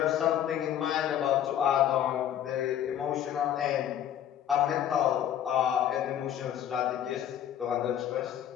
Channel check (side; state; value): right; quieter; 10.5 dB